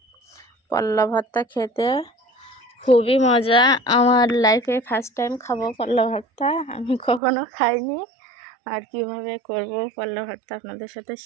পল্লা ভর্তা খেতে খুবই মজা। আমার লাইফে ফার্স্ট টাইম খাবো পল্লা ভর্তা। আমি কখনো খাইনি। আর কিভাবে করব পল্লা ভর্তা আপনাদের সাথে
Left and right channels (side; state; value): left; drops out; at 7.2 s